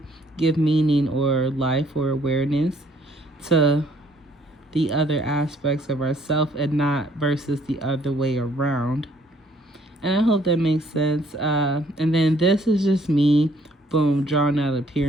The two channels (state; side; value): normal; both; correlation 0.63